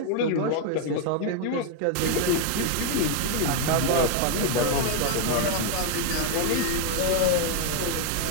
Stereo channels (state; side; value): different; both; correlation 0.01